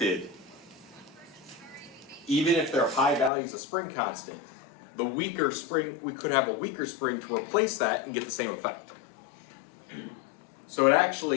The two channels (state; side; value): drops out; right; at 3.3 s